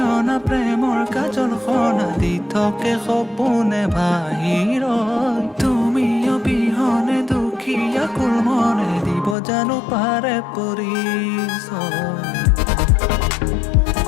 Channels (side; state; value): right; drops out; at 9.3 s